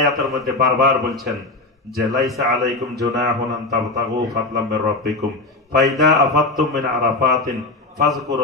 মধ্যে বারবার বলছেন যে লাইসা আলাইকুম জুনাহুন আন তাবতাগু ফাদলাম মির রাব্বিকুম ফাইদা আফাদতুম মিন আরাফাতিন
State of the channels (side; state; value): right; quieter; 3.1 dB